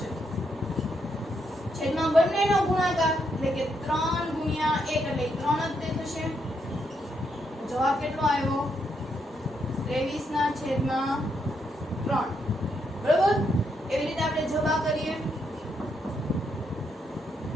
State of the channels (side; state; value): both; normal; correlation 0.78